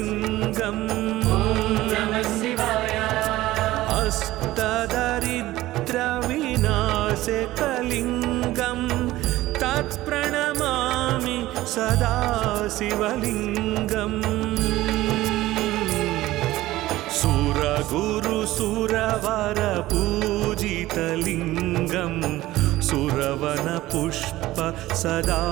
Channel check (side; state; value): left; quieter; 16.6 dB